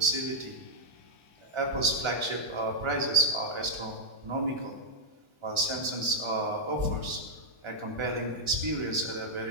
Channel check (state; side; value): late; left; 1.4 ms